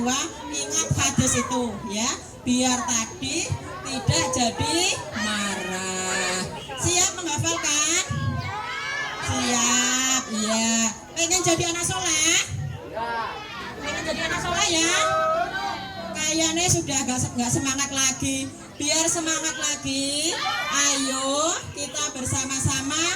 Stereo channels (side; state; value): both; identical; correlation 1.00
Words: ingat hadis itu ya, biar tadi tidak jadi marah. Siap menghafalkan? Siap, iya. Pengen jadi anak soleh? Pengen jadi anak soleh ya? Kayaknya sudah gak semangat lagi. Biar semangat lagi, ayo kita